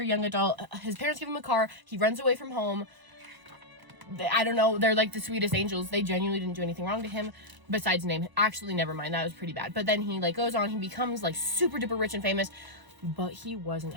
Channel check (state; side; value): late; left; 1.0 ms